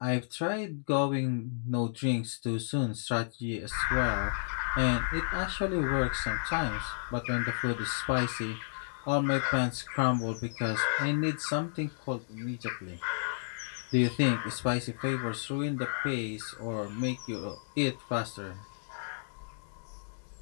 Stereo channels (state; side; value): silent; right; digital silence